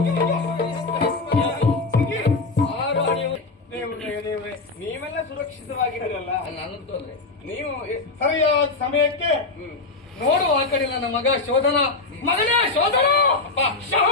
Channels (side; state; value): right; quieter; 3.7 dB